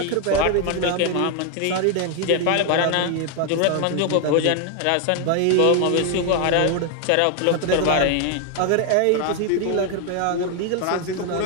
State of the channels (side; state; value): both; different; correlation 0.01